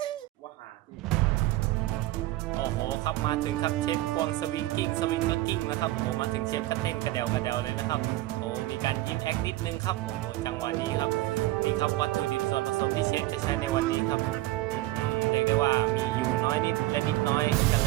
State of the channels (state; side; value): quieter; left; 17.1 dB